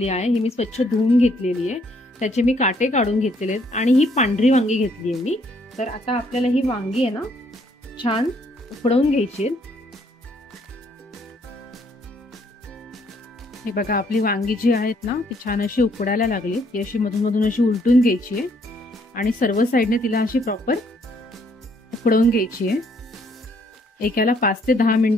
आहे, ही मी स्वच्छ धुवून घेतलेली आहे, त्याचे मी काटे काढून घेतलेले आहेत आणि ही पांढरी वांगी घेतली आहे मी। तर आता आपल्याला ही वांगी आहे ना छान उकडवून घ्यायची। हे बघा, आपली वांगी जी आहेत ना ती छान अशी उकडायला लागली, ती अशी मधून मधून अशी उलटून घ्यायची आहे आणि सर्व साइडने तिला अशी प्रॉपर उकडवून घ्यायची आहे। एकाला 5 ते 10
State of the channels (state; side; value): normal; both; correlation 0.68